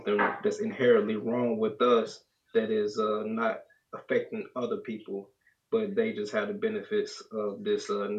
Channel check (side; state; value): both; identical; correlation 1.00